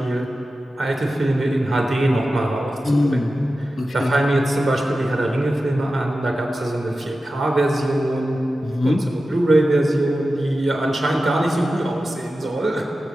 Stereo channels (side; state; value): both; normal; correlation 0.93